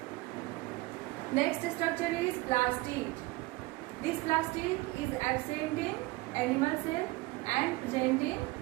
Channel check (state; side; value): quieter; left; 21.5 dB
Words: Next structure is plastid. This plastid is absent in animal cell and present in